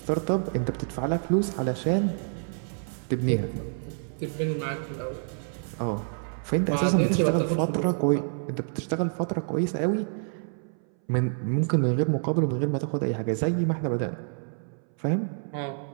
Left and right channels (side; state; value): left; silent; 60 dB below the other